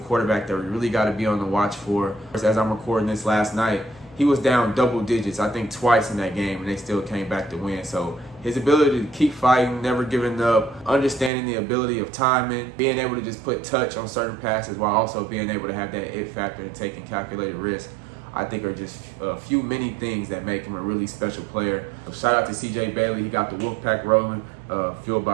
that we really got to be on the watch for. As I'm recording this last night, he was down double digits, I think twice in that game, and they still came back to win. So his ability to keep fighting, never giving up, understanding the ability of timing, being able to just put touch on certain passes while also being able to have that it factor and taking calculated risk, I think are just many things that make him a really special player. So shout out to CJ Bailey. He got the Wolfpack rolling, Fueled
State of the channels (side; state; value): left; drops out; at 11.3 s